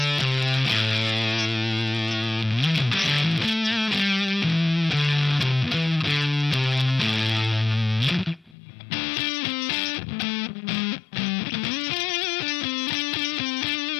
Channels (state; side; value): drops out; right; at 8.6 s